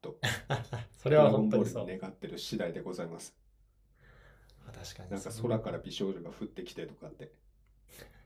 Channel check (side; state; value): both; identical; correlation 1.00